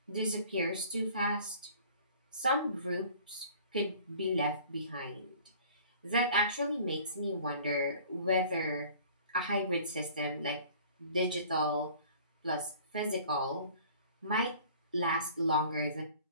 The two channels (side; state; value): both; inverted; correlation -0.49